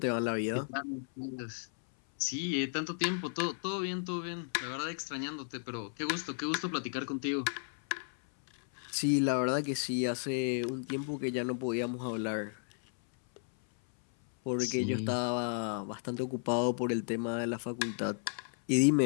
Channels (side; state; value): right; silent; 55 dB below the other